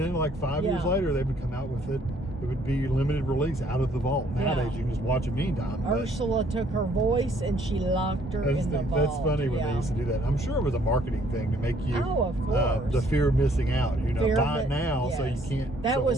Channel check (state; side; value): normal; both; correlation 0.64